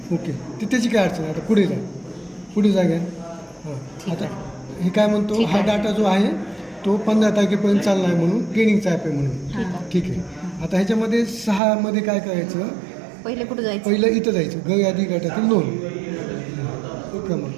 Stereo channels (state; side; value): drops out; left; at 11.6 s